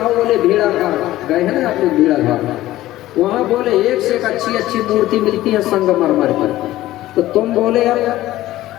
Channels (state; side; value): quieter; right; 15.4 dB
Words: बोले भेड़ा घाट गए हैं ना आप लोग, भेड़ा घाट वहाँ बोले एक से एक अच्छी मूर्ति मिलती है संगमरमर पर। तो तुम बोले अब